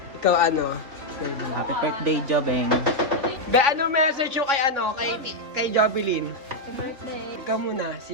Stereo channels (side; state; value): left; late; 3.2 ms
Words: Ikaw ano? Happy birthday, Jobeng. Be, ano message yung kay ano? Kay Jovelyn? Happy birthday. Ikaw muna.